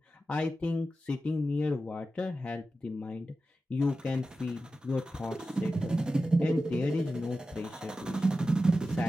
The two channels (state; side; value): normal; both; correlation 0.92